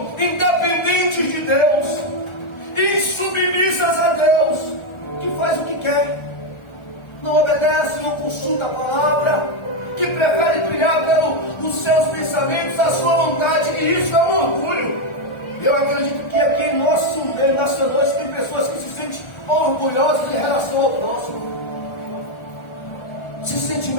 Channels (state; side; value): late; right; 1.4 ms